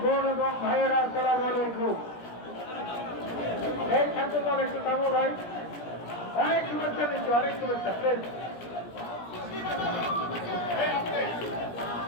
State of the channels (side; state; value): right; late; 17 ms